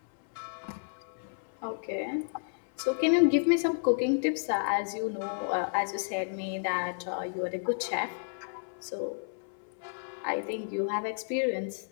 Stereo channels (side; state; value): right; silent; 57 dB below the other